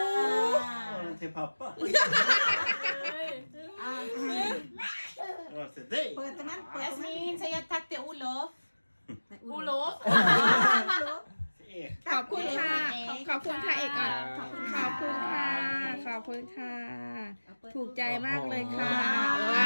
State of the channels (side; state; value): both; inverted; correlation -1.00